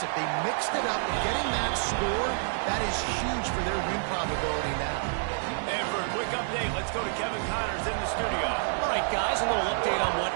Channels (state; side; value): silent; left; 59 dB below the other